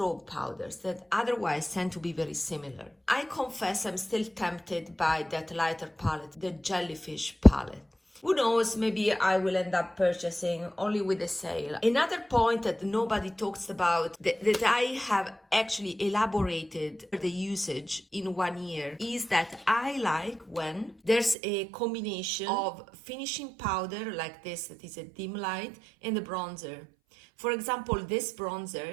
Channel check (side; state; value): left; drops out; at 21.4 s